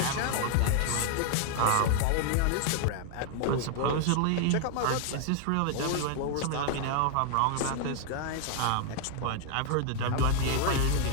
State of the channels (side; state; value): both; different; correlation 0.00